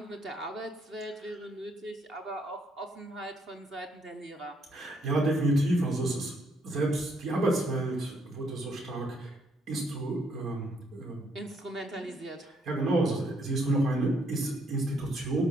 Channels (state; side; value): normal; both; correlation 0.71